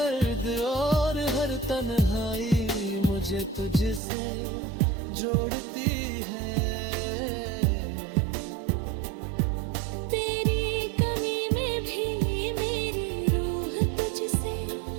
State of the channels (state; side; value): drops out; left; at 4.0 s